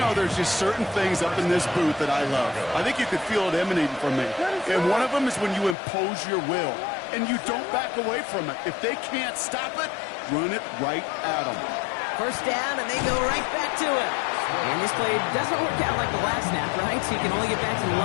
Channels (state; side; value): drops out; right; at 5.8 s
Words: there's just certain things up in this booth that I love. I think you could feel it emanating from me. And one of them is when you impose your will, and you don't back away from it. If they can't stop it, run it right at them. First down, and they go right back to it. And this play doesn't work out like the last snap, right? So you can only get back to the